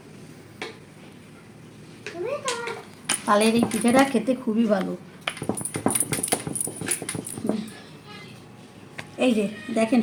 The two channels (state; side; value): identical; both; correlation 1.00